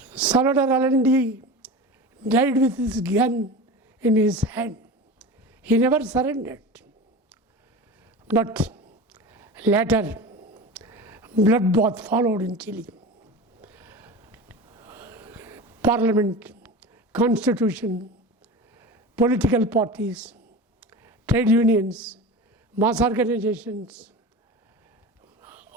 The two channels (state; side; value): normal; both; correlation 0.31